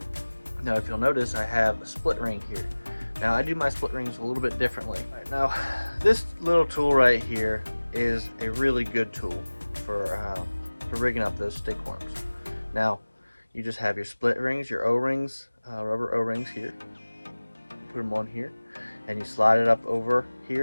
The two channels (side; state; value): both; inverted; correlation -1.00